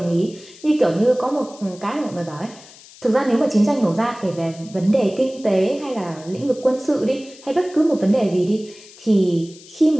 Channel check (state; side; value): noise; left; hiss, 21 dB below the sound